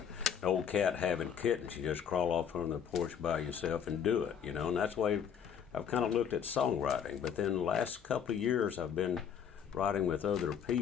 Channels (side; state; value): right; quieter; 8.0 dB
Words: old cat having kittens. You just crawl off on the porch by yourself and do it, and that's the way I've kind of looked at songwriting. But then the last couple of years I've been writing with other